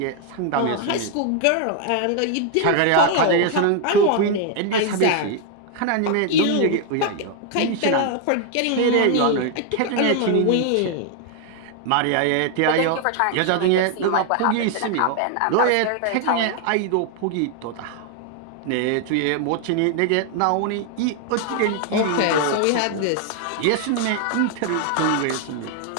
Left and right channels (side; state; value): both; different; correlation 0.00